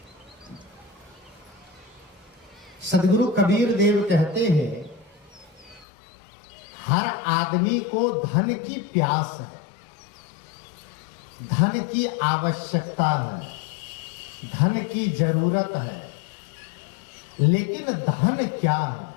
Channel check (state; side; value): drops out; right; at 5.9 s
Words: सदगुरु कबीर देव कहते हैं, हर आदमी को धन की प्यास है, धन की आवश्यकता है, धन की जरूरत है, लेकिन धन क्या है?